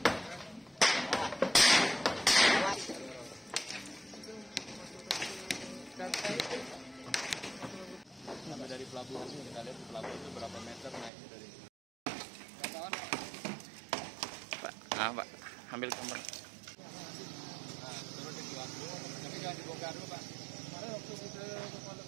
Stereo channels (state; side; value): drops out; left; at 11.1 s